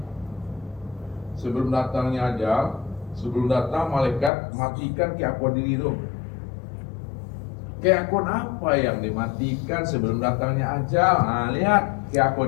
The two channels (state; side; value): drops out; right; at 4.3 s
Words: Sebelum datangnya ajal, sebelum datang malaikat, matikan keakuan diri itu. Keakuan apa yang dimatikan sebelum datangnya ajal? Nah, lihat